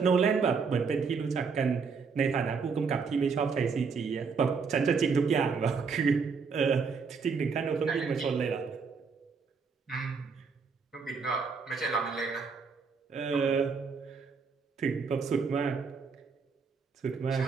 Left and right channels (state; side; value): quieter; left; 5.3 dB